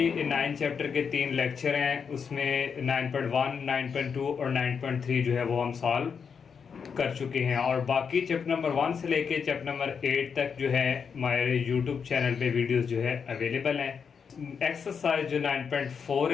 9 चैप्टर के 3 लेक्चर हैं उसमें 9.1, 9.2 और 9.3 जो है वो हम सॉल्व कर चुके हैं और बाकी चैप्टर नंबर 1 से लेके चैप्टर नंबर 8 तक जो है हमारे यूट्यूब चैनल पे वीडियोस जो है अवेलेबल हैं। एक्सरसाइज जो 9.4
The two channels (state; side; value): quieter; right; 6.4 dB